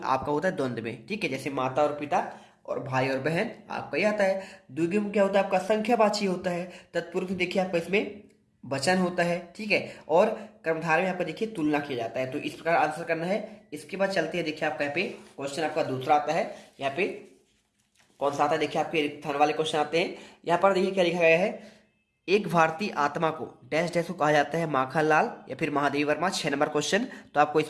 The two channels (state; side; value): identical; both; correlation 1.00